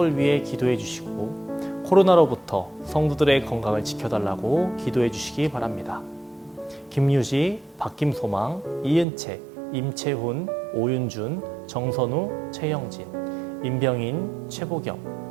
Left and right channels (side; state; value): left; drops out; at 9.1 s